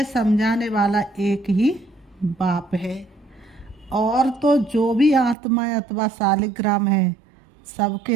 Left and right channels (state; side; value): drops out; left; at 5.4 s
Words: समझाने वाला एक ही बाप है। और तो जो भी आत्मा अथवा सालिग्राम है,